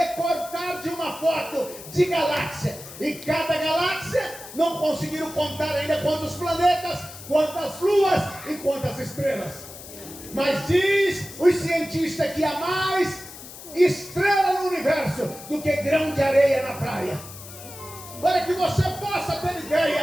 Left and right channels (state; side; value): noise; left; hiss, 15 dB below the sound